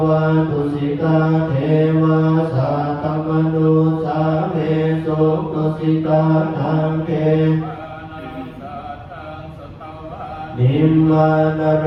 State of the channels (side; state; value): both; identical; correlation 1.00